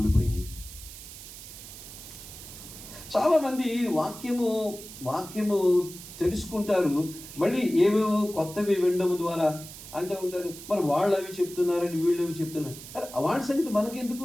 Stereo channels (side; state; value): right; noise; hiss, 14 dB below the sound